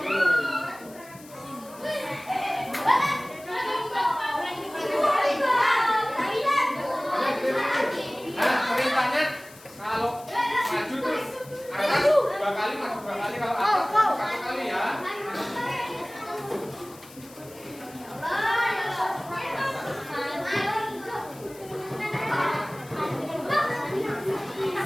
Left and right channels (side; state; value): left; noise; hiss, 21 dB below the sound